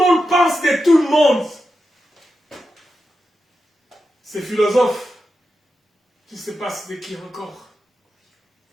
pense de tout le monde, ces philosophes, je ne sais pas c'était qui encore.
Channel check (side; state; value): both; normal; correlation 0.89